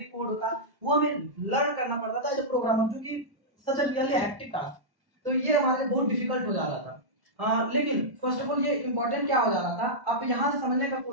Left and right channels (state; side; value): late; left; 1.1 ms